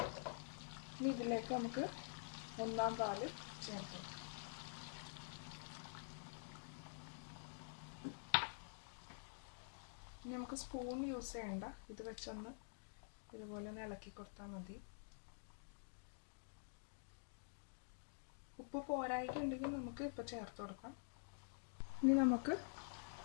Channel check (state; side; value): silent; right; digital silence